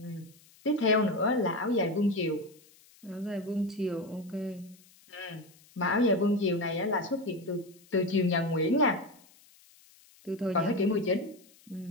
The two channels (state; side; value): noise; left; hiss, 27 dB below the sound